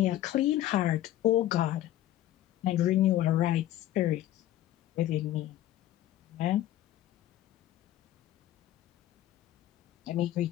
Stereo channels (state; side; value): quieter; right; 13.5 dB